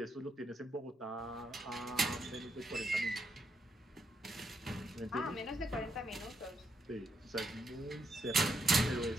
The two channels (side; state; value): both; normal; correlation 0.79